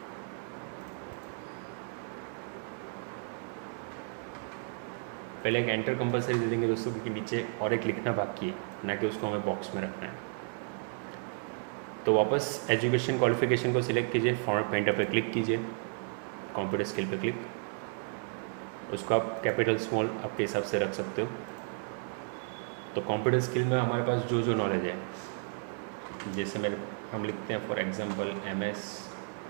पहले एक एंटर कंपलसरी दे देंगे दोस्तों, क्योंकि नीचे और एक लिखना बाकी है, ना कि उसको हमें बॉक्स में रखना है। तो वापस एजुकेशन क्वालिफिकेशन को सिलेक्ट कीजिए, फॉर्मेट पेंटर पे क्लिक कीजिए, कंप्यूटर स्किल पे क्लिक, उसको आप कैपिटल स्मॉल आपके हिसाब से रख सकते हो। तो कंप्यूटर स्किल में हमारे पास जो जो नॉलेज है, जैसे हम लिखते हैं फॉर एग्जांपल MS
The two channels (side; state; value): left; silent; 56 dB below the other